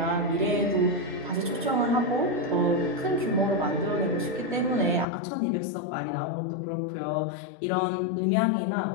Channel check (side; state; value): right; drops out; at 5.1 s